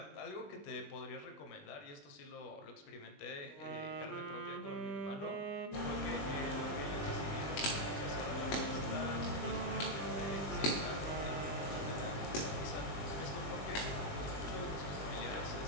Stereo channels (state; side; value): late; right; 20 ms